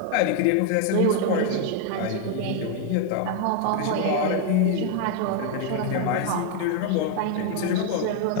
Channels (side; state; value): both; different; correlation 0.01